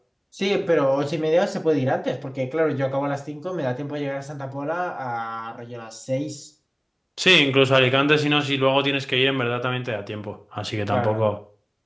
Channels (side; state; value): both; identical; correlation 1.00